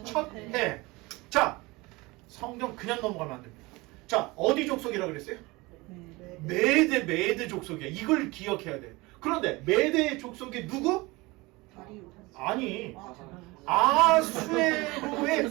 첫 해. 자, 성경 그냥 넘어가면 안 됩니다. 자, 어디 족속이라고 그랬어요? 메대 족속이야. 이걸 기억해야 돼. 그런데 메대 족속이 누구? 아니,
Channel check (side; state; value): left; quieter; 23.0 dB